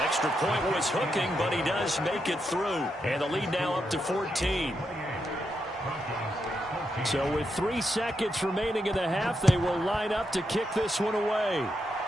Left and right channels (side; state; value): both; normal; correlation 0.83